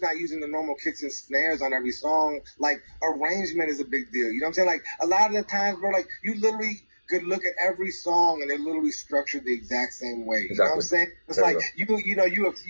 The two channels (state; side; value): inverted; both; correlation -1.00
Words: not using the normal kicks and snares on every song, like, arrangement is a big deal. You know what I'm saying? Like, a lot of the times, bro, like, you literally could look at every song and they're literally structured the exact same way. You know what I'm saying? It's like you know